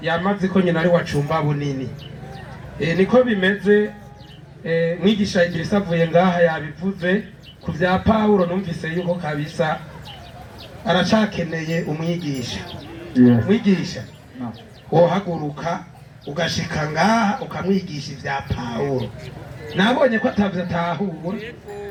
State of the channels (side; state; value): both; identical; correlation 1.00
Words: yamaze ko nyina ari wacumba bunini. Niko bimeze mwigisha Igirisa avuye ngaha yabivuze ku bya Pawulo numvise yuko kabisa aracakeneye umwigisha. Mwigisha wohaguruka ugashika ngaha ukamwigisha ibya Pawulo. Nabonye ko atavyatahura